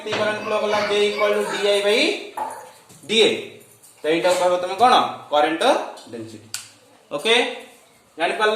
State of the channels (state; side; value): identical; both; correlation 1.00